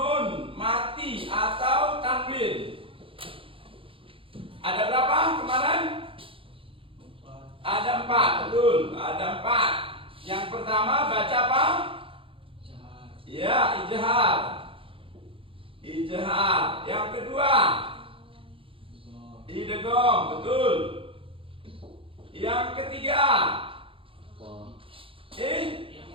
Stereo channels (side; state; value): left; late; 0.26 ms